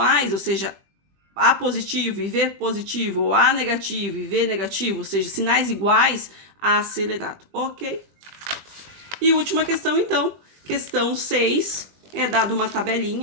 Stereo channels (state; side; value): late; left; 20 ms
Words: ou seja, A positivo e V positivo, ou A negativo e V negativo, ou seja, sinais iguais, acelerado, ok? E última questão, então, questão 6, é dado uma